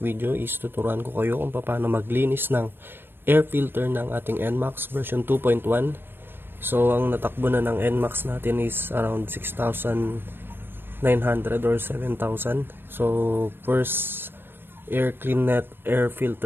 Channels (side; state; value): left; late; 0.099 ms